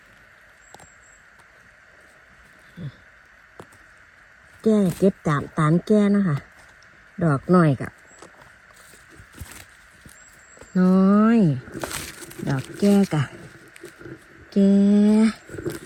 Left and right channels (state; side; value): identical; both; correlation 1.00